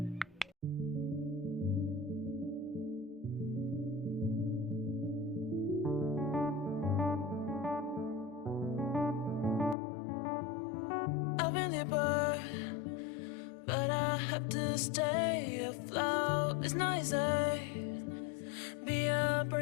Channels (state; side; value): drops out; right; at 9.8 s